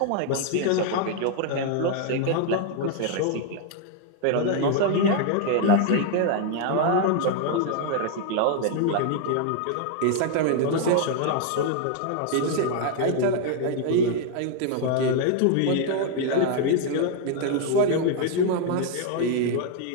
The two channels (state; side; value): different; both; correlation 0.00